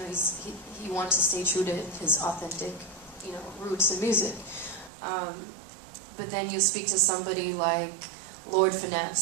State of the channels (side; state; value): left; drops out; at 4.9 s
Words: he wants to stay true to his authentic, roots in music. But then you speak to somebody like Lord